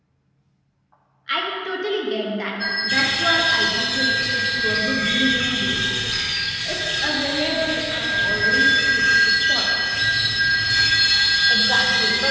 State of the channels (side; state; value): both; identical; correlation 1.00